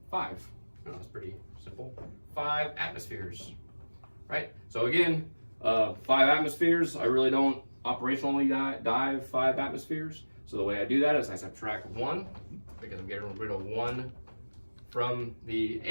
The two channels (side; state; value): both; inverted; correlation -1.00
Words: 5. Oh, that's pretty simple. 5 atmospheres, right? So again, 5 atmospheres, I really don't operationally dive 5 atmospheres. So the way I do that is I subtract 1, because I'm getting rid of 1 from the